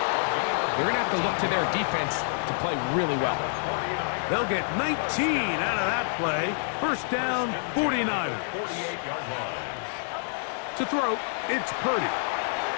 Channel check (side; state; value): right; silent; 60 dB below the other